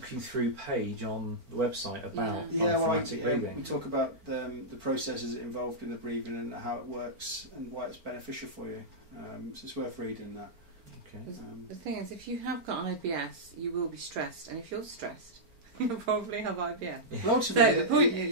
you through page on the website about diaphragmatic breathing. We talk about the processes involved in the breathing and how it works and why it's beneficial for you. So it's worth reading that. Okay. The thing is, if you have got an IBS, you will be stressed, and if you're stressed, you'll probably have IBS. Well, ultimately, So the point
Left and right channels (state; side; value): late; left; 4.4 ms